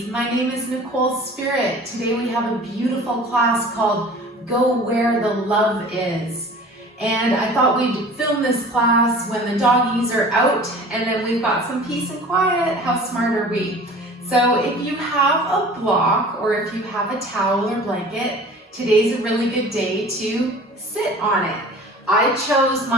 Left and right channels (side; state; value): both; normal; correlation 0.43